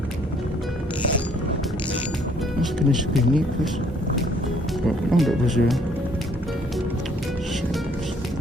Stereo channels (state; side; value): normal; both; correlation 0.63